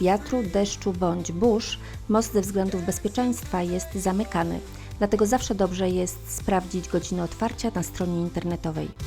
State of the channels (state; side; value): identical; both; correlation 1.00